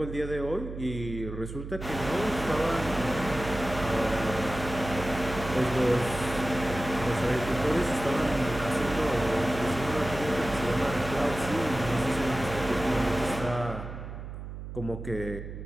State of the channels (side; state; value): right; noise; hum, 9 dB below the sound